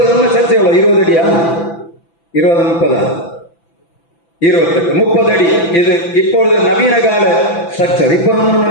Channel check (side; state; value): right; late; 5.9 ms